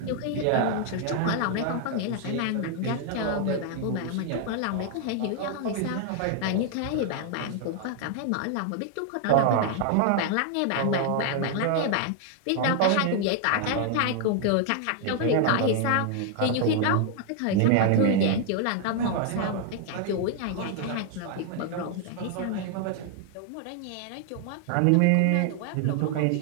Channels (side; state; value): both; different; correlation 0.00